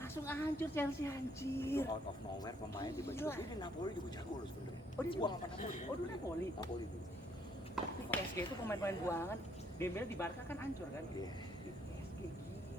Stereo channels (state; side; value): normal; both; correlation 0.68